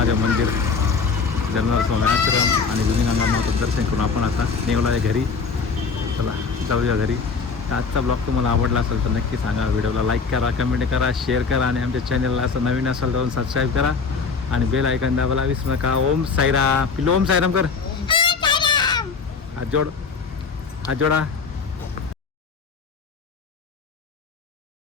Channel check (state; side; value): quieter; right; 5.2 dB